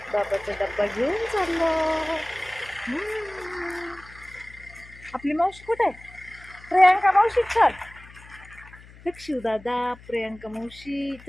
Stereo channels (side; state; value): left; noise; hum, 21 dB below the sound